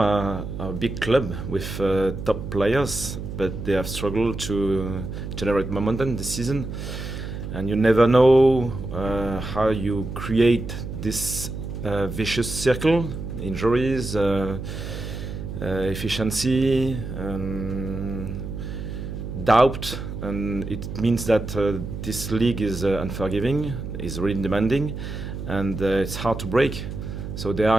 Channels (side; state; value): right; noise; hum, 7 dB below the sound